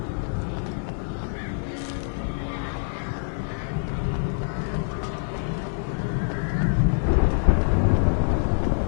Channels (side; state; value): right; silent; 61 dB below the other